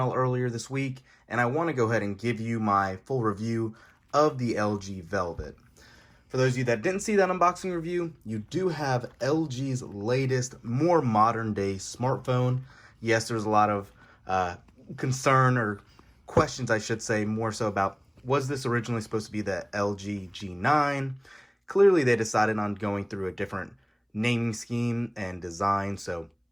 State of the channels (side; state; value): both; identical; correlation 1.00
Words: earlier this week, and I want to go ahead and give you my full review of the LG Velvet. For those of you that didn't see that unboxing review, you do have LG's latest, more modern day smartphone. Yes, there's a lot of concern or questions, I should say, more so about, was this originally supposed to be the LG G9? Clearly, they decided on going through a different naming scheme and design, so